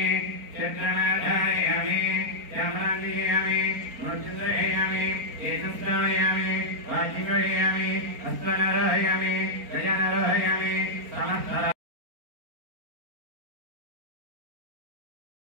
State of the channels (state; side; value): late; left; 4.4 ms